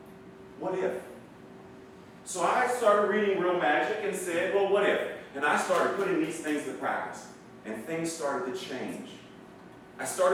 What if? So I started reading Real Magic and said, well, what if? And I started putting these things to practice. And things started to change. I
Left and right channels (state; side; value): identical; both; correlation 1.00